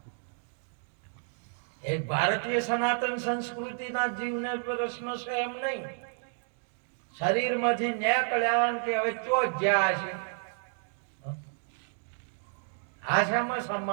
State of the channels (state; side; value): silent; left; 57 dB below the other